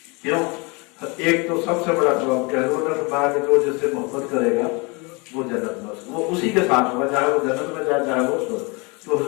کیوں؟ ایک تو سب سے بڑا سبب کہ حضور نے فرمایا کہ جو جس سے محبت کرے گا وہ جنت میں وہ اسی کے ساتھ ہوگا، چاہے وہ جنت میں جائے چاہے وہ تو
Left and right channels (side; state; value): right; quieter; 28.9 dB